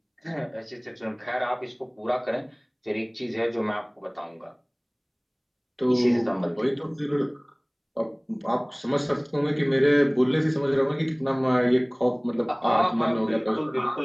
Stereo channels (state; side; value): identical; both; correlation 1.00